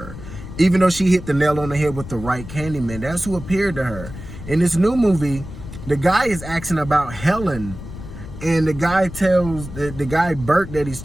Even though she hit the nail on the head with the right Candyman, that's who appeared to her. In this new movie, the guy is asking about Helen. And the guy tells, the guy Bert that he's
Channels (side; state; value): left; noise; rumble, 12 dB below the sound